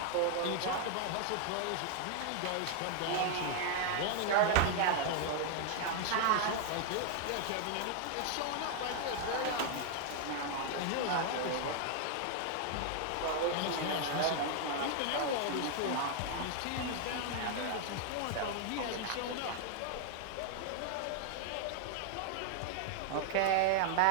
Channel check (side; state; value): both; different; correlation 0.00